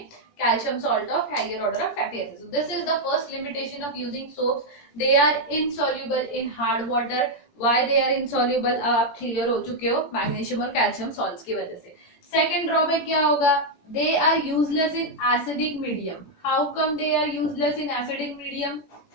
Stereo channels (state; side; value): late; right; 18 ms